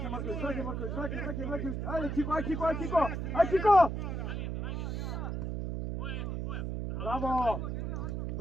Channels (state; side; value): noise; right; hum, 3 dB below the sound